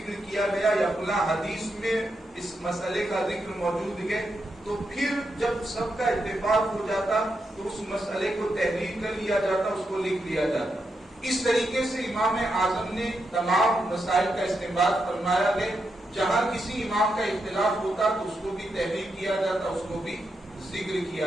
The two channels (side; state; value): both; normal; correlation 0.84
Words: کیا گیا یا فلاں حدیث میں اس مسئلے کا ذکر موجود ہے, تو پھر جب سب کا اتفاق ہو جاتا تو اس مسئلے کو تحریر کر لیا جاتا, اس کو لکھ لیا جاتا. اس طریقے سے امام اعظم نے تمام مسائل کا استنباط فرمایا ہے. جہاں کسی امام کا اختلاف ہوتا تو اس کو بھی تحریر کیا جاتا, اس کو بھی ذکر